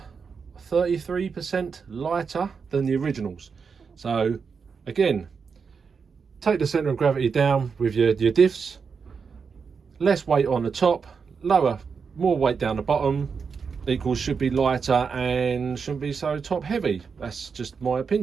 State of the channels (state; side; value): quieter; left; 5.7 dB